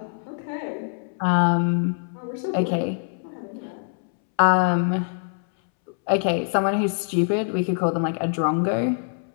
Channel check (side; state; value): right; silent; 62 dB below the other